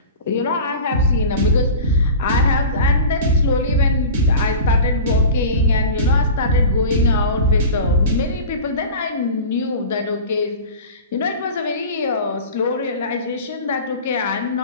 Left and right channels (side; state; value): both; inverted; correlation -0.34